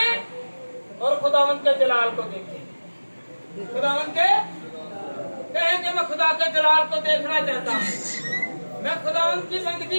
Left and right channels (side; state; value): both; inverted; correlation -1.00